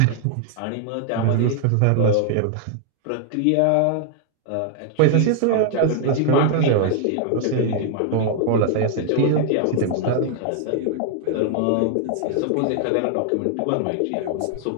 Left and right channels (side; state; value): both; different; correlation 0.00